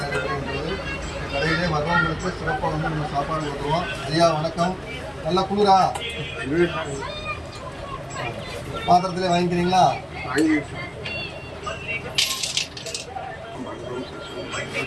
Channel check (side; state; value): both; identical; correlation 1.00